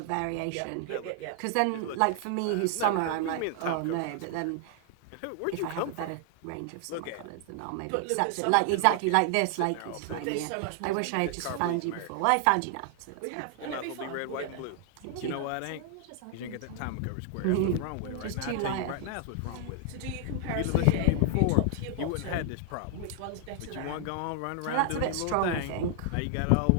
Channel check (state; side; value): different; both; correlation 0.00